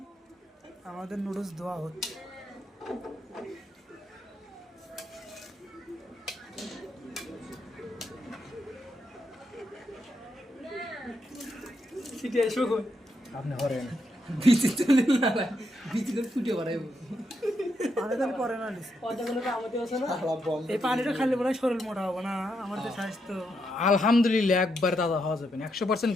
আমাদের নুডলস ধোয়া হচ্ছে সিটি এসো কই আপনি হরেন বিচি চলে না বিচি করে ফুটে বাড়াইবো আমাদের পরে না দিছে পয়দাগুলো আমাদের আছে না এই পানিটা খালি বলে শরীর মোটা হবে না আমাদের স্বাস্থ্য আলহামদুলিল্লাহ একবার দাদা হওয়া যাবে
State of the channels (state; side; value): normal; both; correlation 0.80